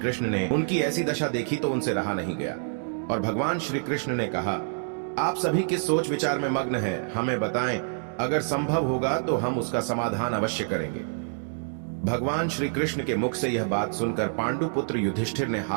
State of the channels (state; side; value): silent; left; digital silence